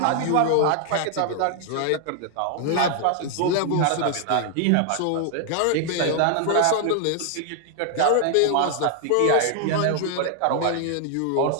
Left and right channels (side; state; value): both; different; correlation 0.00